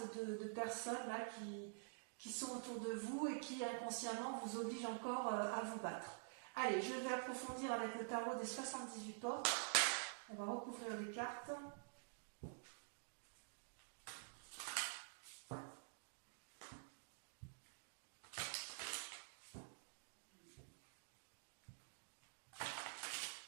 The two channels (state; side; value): silent; left; digital silence